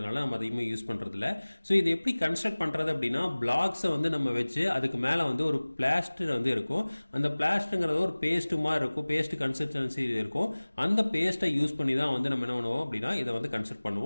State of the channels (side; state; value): both; inverted; correlation -1.00